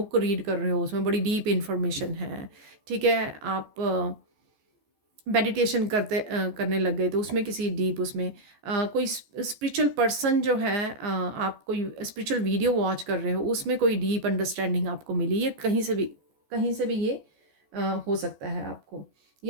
रीड कर रहे हो, उसमें बड़ी डीप इंफॉर्मेशन है। ठीक है, आप मेडिटेशन करने लग गए तो उसमें किसी डीप, उसमें कोई स्पिरिचुअल पर्सन जो है, आप कोई स्पिरिचुअल वीडियो वॉच कर रहे हो, उसमें कोई डीप अंडरस्टैंडिंग आपको मिली, ये कहीं से भी ये हो सकता है आपको।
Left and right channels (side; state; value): left; late; 14 ms